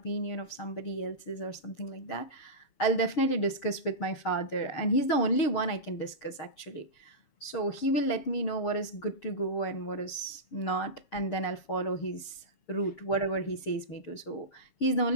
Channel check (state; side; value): late; right; 7.1 ms